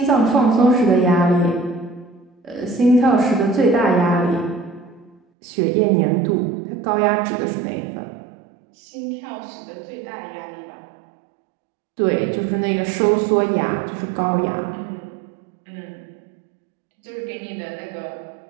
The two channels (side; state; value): left; drops out; at 5.2 s